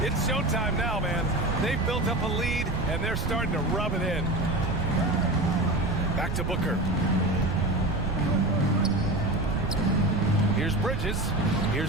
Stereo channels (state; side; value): noise; right; rumble, 4 dB below the sound